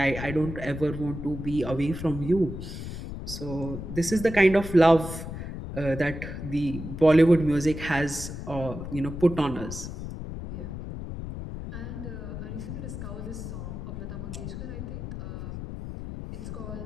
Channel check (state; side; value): noise; left; rumble, 7 dB below the sound